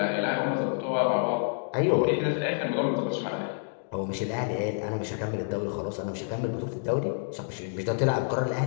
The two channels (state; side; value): silent; right; digital silence